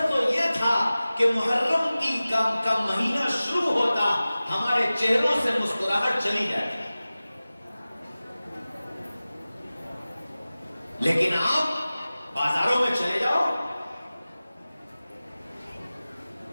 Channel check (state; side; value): inverted; both; correlation -0.97